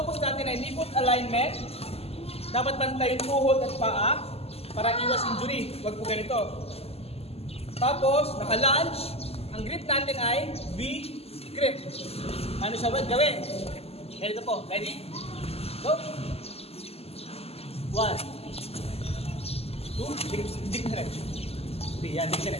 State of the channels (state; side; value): late; right; 0.29 ms